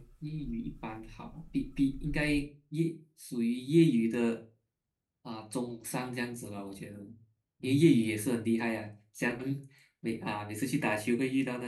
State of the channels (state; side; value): identical; both; correlation 1.00